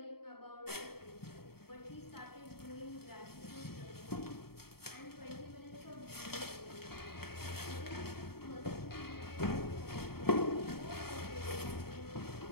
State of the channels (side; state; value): right; late; 0.95 ms